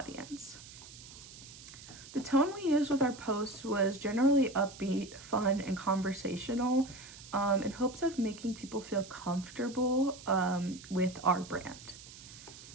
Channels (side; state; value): right; noise; hiss, 17 dB below the sound